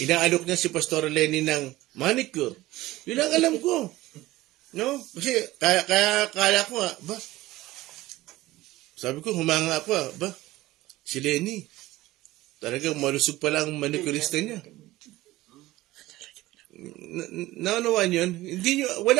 niya si Pastor Lenny ng manicure. Yun ang alam ko. No? Kasi kaya ko ba? Sabi ko, humanga ako ba? Si Lenny. Talagang malusog pala ang manicurista niya. Naunawaan yun? Hindi nyo,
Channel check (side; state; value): left; quieter; 17.6 dB